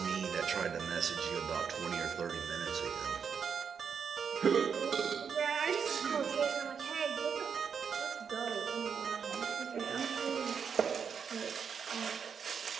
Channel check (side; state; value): left; quieter; 6.7 dB